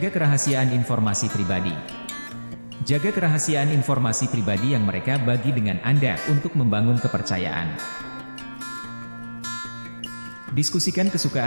kerahasiaan informasi pribadi. Jaga kerahasiaan informasi pribadi yang mereka bagi dengan Anda untuk membangun kepercayaan. Diskusikan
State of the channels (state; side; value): inverted; both; correlation -1.00